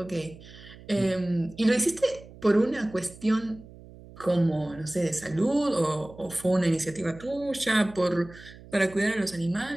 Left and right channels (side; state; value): right; noise; hum, 19 dB below the sound